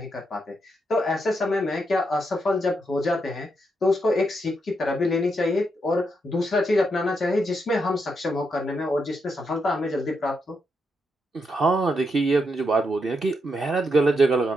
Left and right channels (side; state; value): both; normal; correlation 0.81